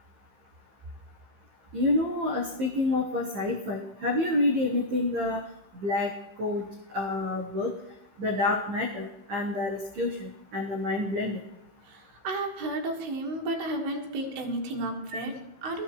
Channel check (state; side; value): late; left; 15 ms